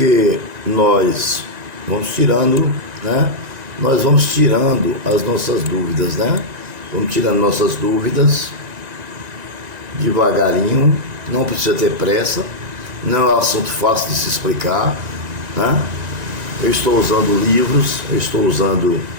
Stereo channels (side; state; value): left; late; 1.9 ms